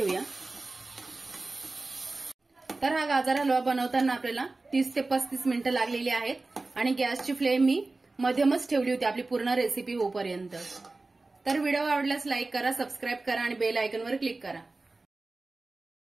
तर हा गाजर हलवा बनवताना आपल्याला 30 ते 35 मिनिटं लागलेली आहेत आणि गॅसची फ्लेम मी मध्यमच ठेवली होती आपली पूर्ण रेसिपी होईपर्यंत। तर व्हिडिओ आवडल्यास लाईक करा, सबस्क्राईब करा आणि बेल आयकॉनवर क्लिक करा।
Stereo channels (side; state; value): left; quieter; 3.4 dB